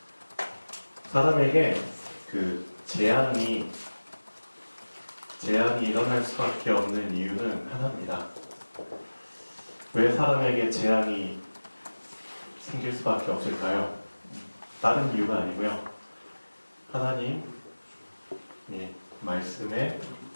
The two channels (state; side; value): inverted; both; correlation -1.00